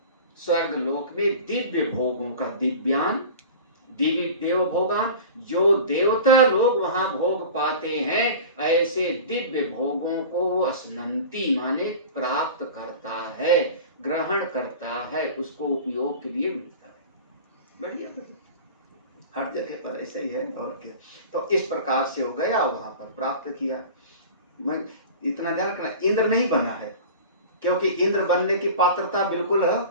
स्वर्ग लोक में दिव्य भोगों का, दिव्यान दिव्य देव भोगान, जो देवता लोग वहां भोग पाते हैं, ऐसे दिव्य भोगों को वो असनंती माने प्राप्त करता है, ग्रहण करता है, उसको उपयोग के लिए मिलता है। बढ़िया, हर जगह पर ऐसे ही है और क्या। तो इस प्रकार से हो गया, वहां पर प्राप्त किया। मैं इतना ध्यान रखना, इंद्र नहीं बना है, क्योंकि इंद्र बनने की पात्रता बिल्कुल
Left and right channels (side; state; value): both; inverted; correlation -0.37